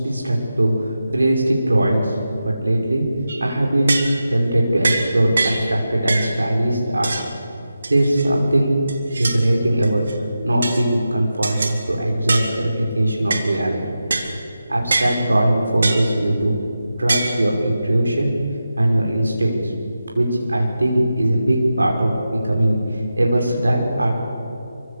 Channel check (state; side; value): inverted; both; correlation -0.91